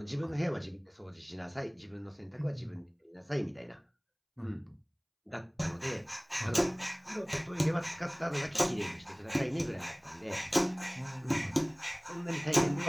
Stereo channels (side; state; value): both; identical; correlation 1.00